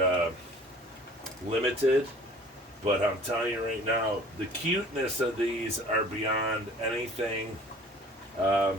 limited. But I'm telling you right now, the cuteness of these are beyond anything I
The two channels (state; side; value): normal; both; correlation 0.48